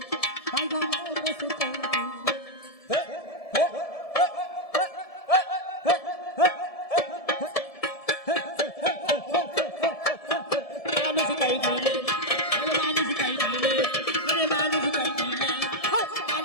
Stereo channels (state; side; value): late; right; 1.7 ms